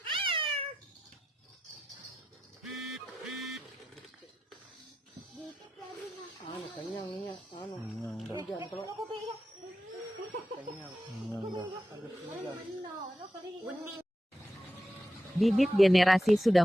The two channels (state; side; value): normal; both; correlation 0.89